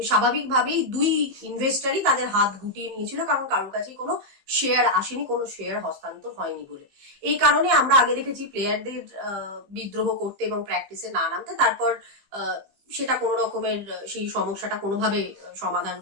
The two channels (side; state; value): left; late; 15 ms